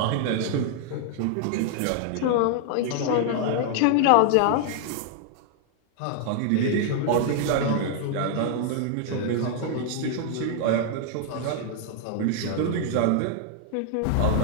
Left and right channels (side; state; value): both; different; correlation 0.00